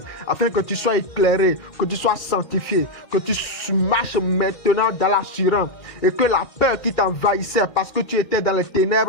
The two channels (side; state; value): right; late; 2.4 ms